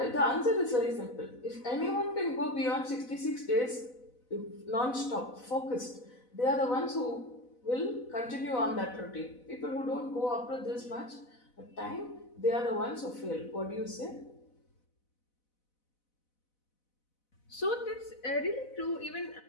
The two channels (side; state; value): right; late; 4.0 ms